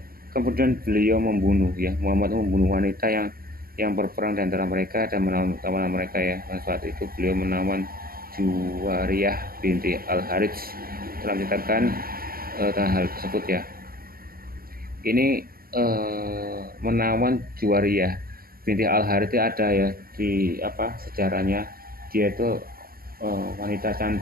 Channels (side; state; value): left; late; 0.43 ms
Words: Kemudian beliau membunuh ya, Muhammad membunuh wanita yang berperang di antara mereka dan menawan mereka ya. Dan saat itu beliau menawan Juwariyah binti Al-Harits. Telah menceritakan tentang hal tersebut ya. Ini menawan Juwariyah binti Al-Harits ada ya di sejarahnya. Dia itu wanita